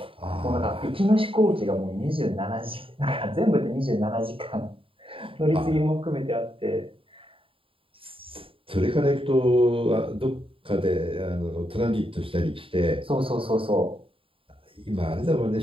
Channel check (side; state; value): left; late; 0.26 ms